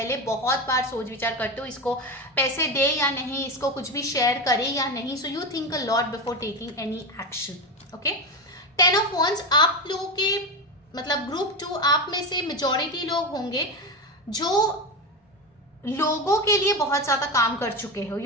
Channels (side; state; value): both; normal; correlation 0.18